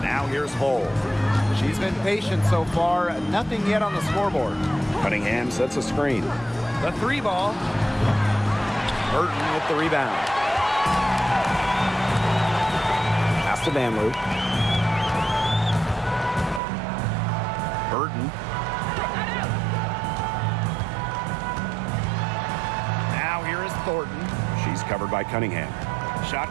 Now here's Hull. She's been patient so far. Nothing yet on the scoreboard. Cunningham sets a screen. The 3 ball. Burton with the rebound. Pass to Van Loo. Burton. Now here is Thornton. She's covered by Cunningham. Shot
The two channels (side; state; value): left; drops out; at 16.6 s